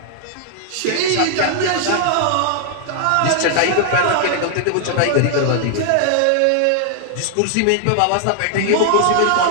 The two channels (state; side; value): different; both; correlation 0.00